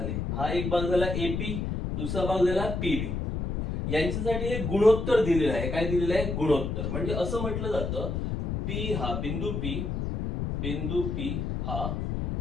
हा एक भाग झाला AP, दुसरा भाग झाला PB. यांच्यासाठी एक गुणोत्तर दिलेला आहे. काय दिलेलं आहे? गुणोत्तर. म्हणजे असं म्हटलं जातं P हा बिंदू P हा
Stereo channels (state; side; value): noise; left; rumble, 2 dB below the sound